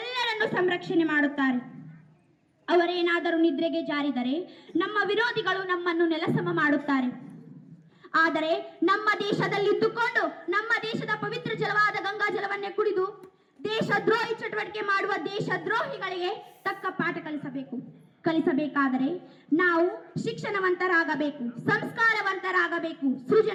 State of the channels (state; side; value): identical; both; correlation 1.00